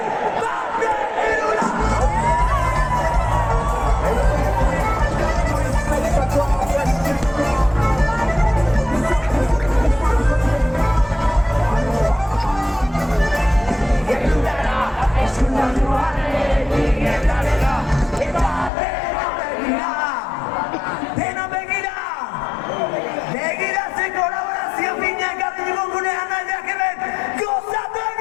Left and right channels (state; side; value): drops out; right; at 18.7 s